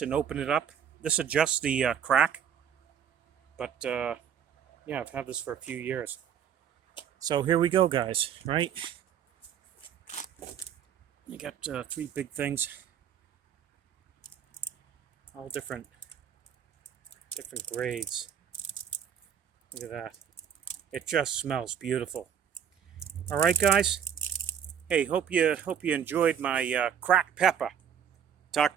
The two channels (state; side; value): quieter; left; 8.5 dB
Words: open it up. This adjusts the crack. But yeah, I've had this for a few years. So here we go, guys. Right? You got three big things, all different grades. Look at that. It just smells beautiful. All right, guys. Hey, hope you enjoyed my cracked pepper. Talk